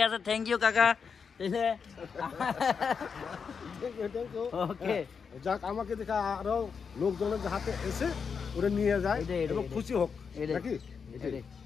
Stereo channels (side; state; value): right; quieter; 6.0 dB